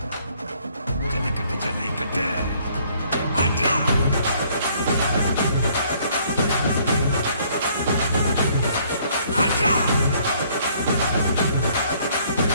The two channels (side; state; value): both; inverted; correlation -0.63